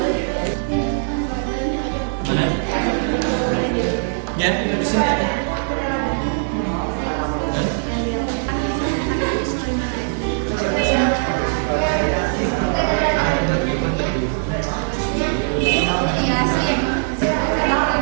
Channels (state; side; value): silent; left; 65 dB below the other